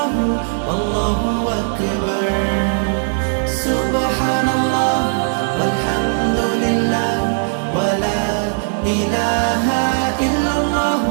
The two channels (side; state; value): left; silent; digital silence